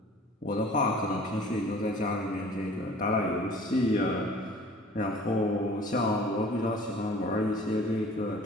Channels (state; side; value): normal; both; correlation 0.48